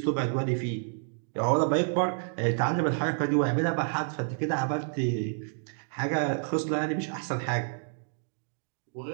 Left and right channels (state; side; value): silent; left; digital silence